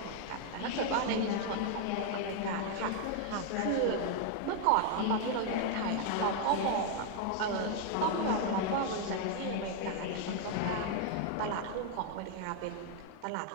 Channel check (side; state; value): both; different; correlation 0.00